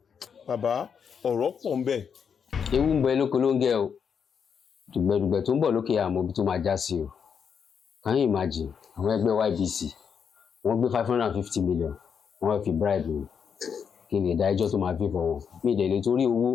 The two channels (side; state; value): right; quieter; 6.9 dB